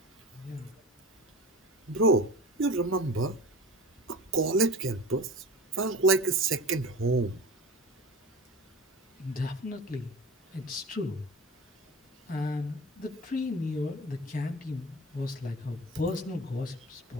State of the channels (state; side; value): normal; both; correlation 0.35